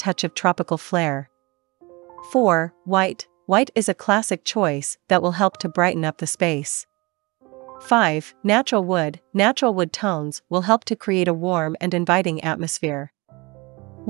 of tropical flair. 4. White. White is a classic choice that will help to brighten up the space. 5. Natural wood. Natural wood tones will help to create a warm and inviting atmosphere.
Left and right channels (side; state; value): left; quieter; 25.1 dB